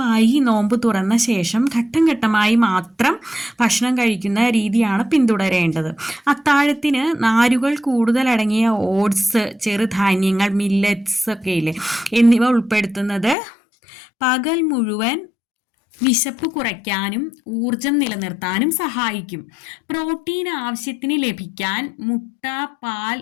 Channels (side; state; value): right; drops out; at 13.4 s